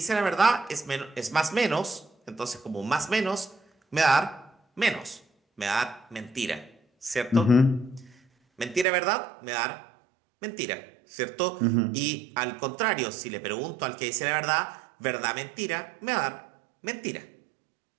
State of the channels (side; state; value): left; drops out; at 8.8 s